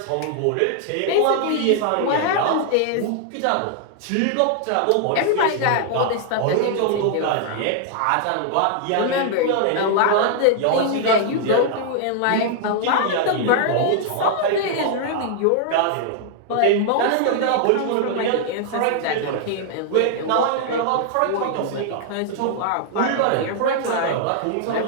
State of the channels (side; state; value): both; different; correlation -0.01